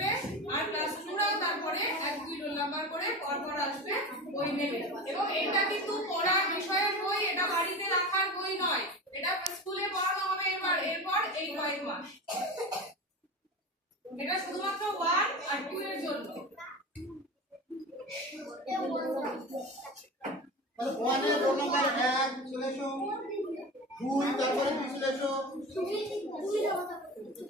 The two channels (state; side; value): normal; both; correlation 0.29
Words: আর ক্লাস 2 রাও তারপরে 1 2 রোল নাম্বার করে পরপর আসবে, বই নেবে। এবং এটা কিন্তু পড়ার বিষয়ের বই, এটা বাড়িতে রাখার বই নয়, এটা স্কুলে পড়ানো হবে এরপর এই কয়েক মাস। এটা শুধুমাত্র 1 আর 2 এর জন্য। তাহলে 1 এর রোল নাম্বার 1 চলে এসো, 2 তারপরে কি চলে এসো,